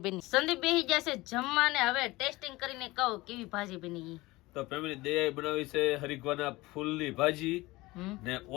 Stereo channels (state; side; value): quieter; right; 20.5 dB